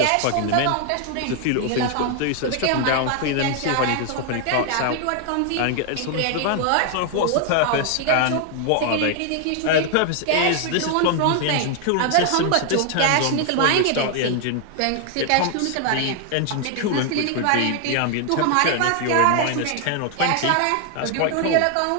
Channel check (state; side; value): different; both; correlation 0.00